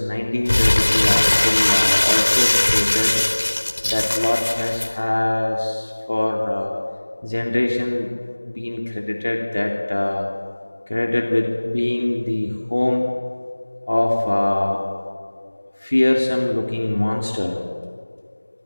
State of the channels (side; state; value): both; inverted; correlation -1.00